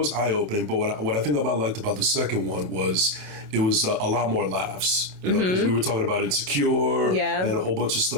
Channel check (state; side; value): late; left; 27 ms